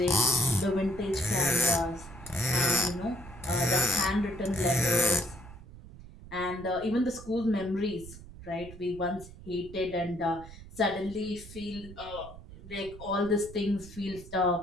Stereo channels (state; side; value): noise; right; rumble, 16 dB below the sound